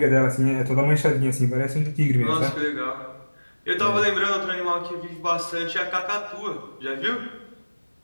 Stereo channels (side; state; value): both; inverted; correlation -1.00